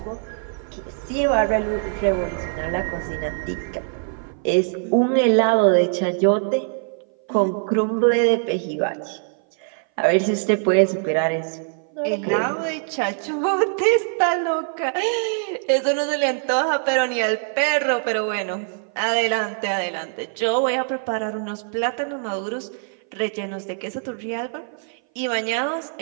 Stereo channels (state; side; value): silent; left; 58 dB below the other